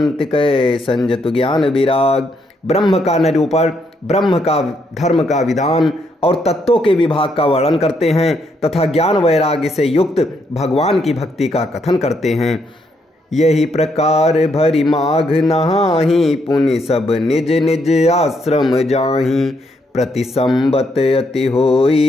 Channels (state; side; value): normal; both; correlation 0.75